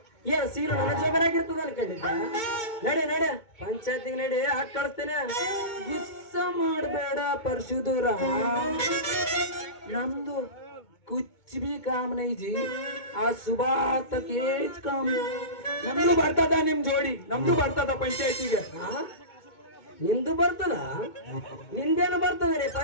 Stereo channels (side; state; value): right; late; 2.2 ms